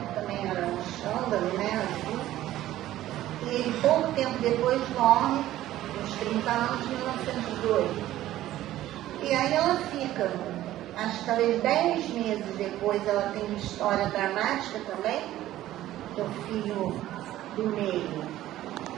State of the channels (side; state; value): left; quieter; 14.2 dB